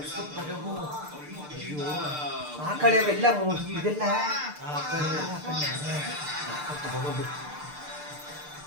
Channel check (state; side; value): late; left; 6.7 ms